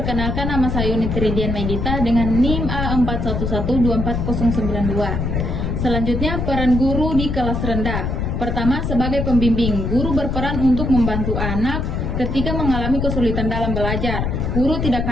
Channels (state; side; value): noise; left; rumble, 1 dB below the sound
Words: nama saya Unit Ridian Maidita dengan NIM A41124092. Selanjutnya, peran guru di kelas rendah. Pertama, sebagai pembimbing, guru berperan untuk membantu anak ketika mengalami kesulitan dalam belajar. Guru tidak